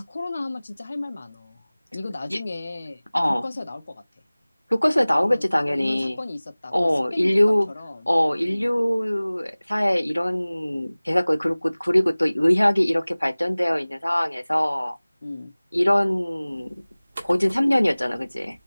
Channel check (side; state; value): both; inverted; correlation -0.99